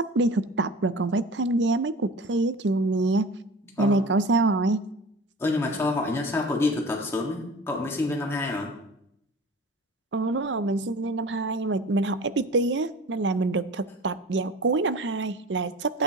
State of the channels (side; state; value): both; normal; correlation 0.39